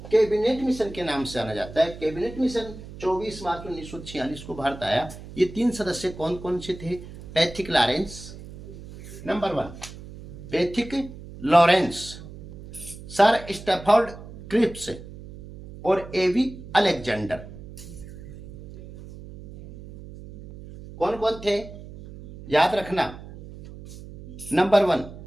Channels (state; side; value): noise; right; hum, 15 dB below the sound